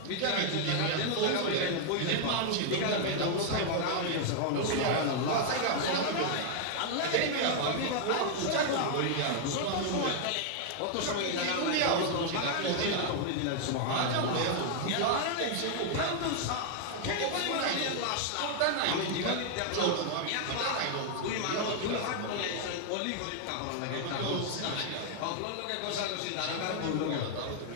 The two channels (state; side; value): different; both; correlation 0.00